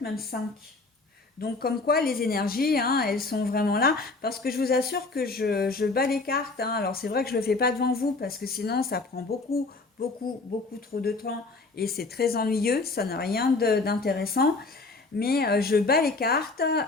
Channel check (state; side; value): quieter; right; 3.6 dB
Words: même 5. Donc comme quoi les énergies, hein, elles sont vraiment là, parce que je vous assure que je bats les cartes. Hein. Alors c'est vrai que je ne le fais pas devant vous, parce que sinon ça prend beaucoup, beaucoup, beaucoup trop de temps, et c'est très ennuyeux, ça n'a rien d'intéressant. Mais je bats les cartes,